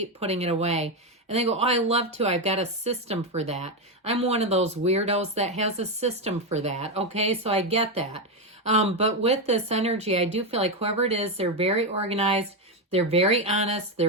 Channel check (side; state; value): both; normal; correlation 0.09